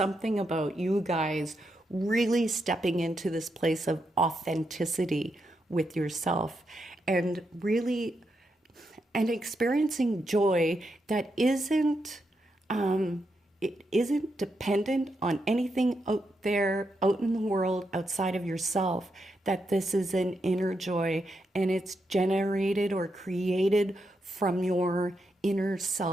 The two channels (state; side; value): normal; both; correlation 0.83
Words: about you guys really stepping into this place of authenticity with yourself, and really experiencing joy that isn't it isn't dependent on anything out there, out in the world, outside of yourself. That this is an inner joy, and it's generated or created from your inner